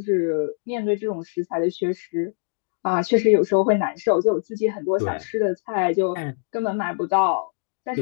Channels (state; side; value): silent; right; digital silence